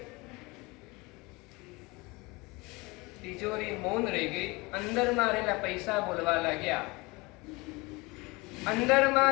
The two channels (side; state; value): right; quieter; 24.6 dB